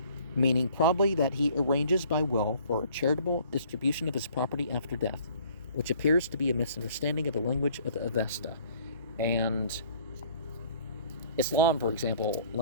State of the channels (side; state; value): both; inverted; correlation -0.56